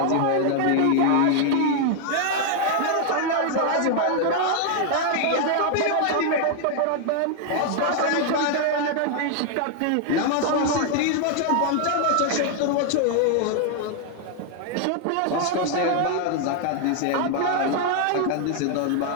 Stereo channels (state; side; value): different; both; correlation 0.00